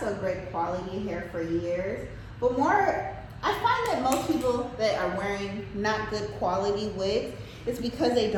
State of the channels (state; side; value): identical; both; correlation 1.00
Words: great quality hair for years. But more, I find that most people that are wearing not good quality wigs, it's because they